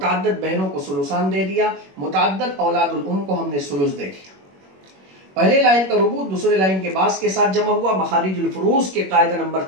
بہنوں کو ثلثان دے دیا, متعدد اولاد الام کو ہم نے ثلث دے دیا. پہلے لائن کا ربع دوسرے لائن کے باس کے ساتھ جمع ہوا. مخارج الفروض کے قاعدہ نمبر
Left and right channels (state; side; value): late; left; 21 ms